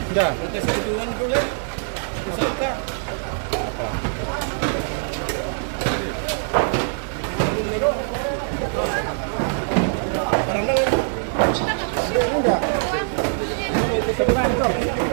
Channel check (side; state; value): left; silent; digital silence